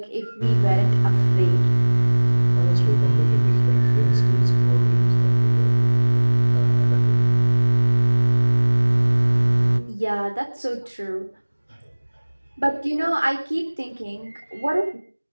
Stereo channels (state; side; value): inverted; both; correlation -1.00